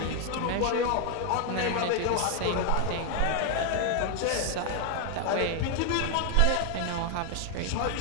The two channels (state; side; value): different; both; correlation 0.00